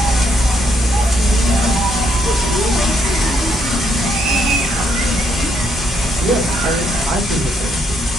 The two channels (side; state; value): both; normal; correlation 0.73